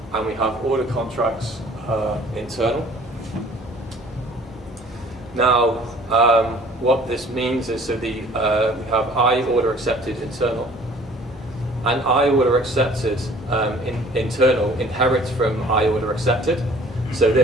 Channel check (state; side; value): normal; both; correlation 0.52